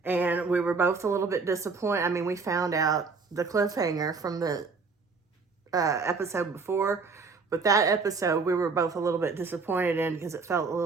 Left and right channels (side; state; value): left; quieter; 4.6 dB